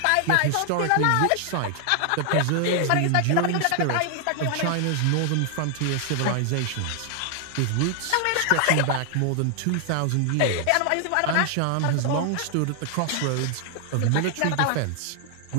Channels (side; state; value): both; different; correlation 0.00